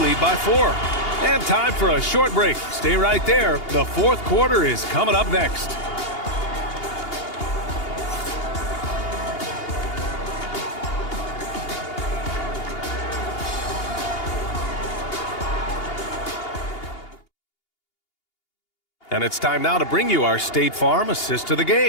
by 4. And time for a short break. Stay right there. The fourth quarter is coming up next. And it's time now to bring you our State Farm assist to the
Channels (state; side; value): late; right; 2.8 ms